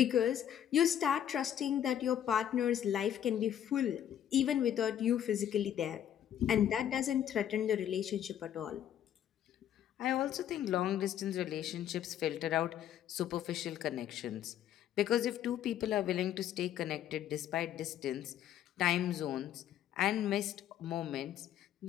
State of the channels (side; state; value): right; quieter; 10.4 dB